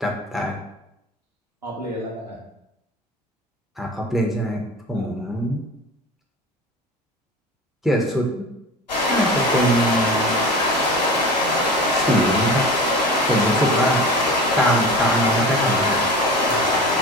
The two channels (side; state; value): both; normal; correlation 0.34